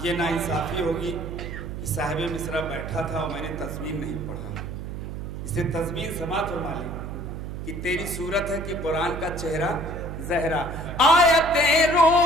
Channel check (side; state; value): right; noise; hum, 7 dB below the sound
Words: یہ ناانصافی ہوگی کہ صاحب مصرع بیٹھا تھا اور میں نے تضمین نہیں پڑھا، اسے تضمین سماعت فرما لی کہ تیری صورت ہے کہ قرآن کا چہرہ زہرا، آیتیں